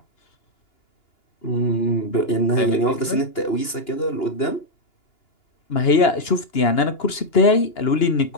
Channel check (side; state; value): right; late; 2.9 ms